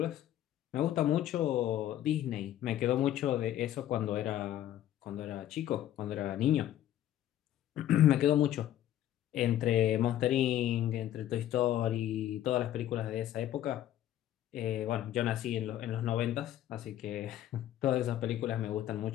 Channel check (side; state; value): right; quieter; 12.2 dB